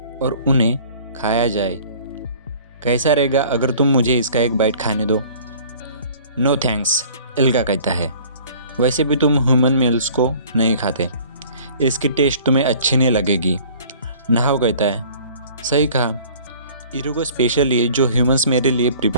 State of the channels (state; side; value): inverted; both; correlation -0.50